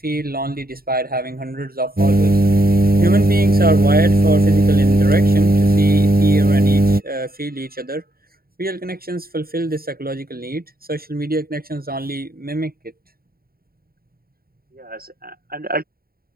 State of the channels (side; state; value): left; late; 0.43 ms